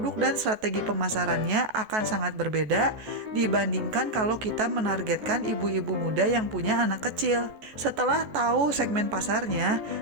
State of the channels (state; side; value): late; left; 14 ms